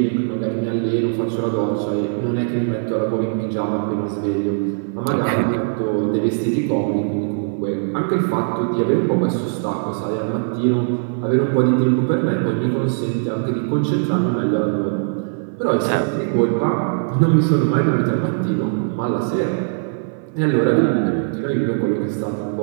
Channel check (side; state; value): left; silent; 59 dB below the other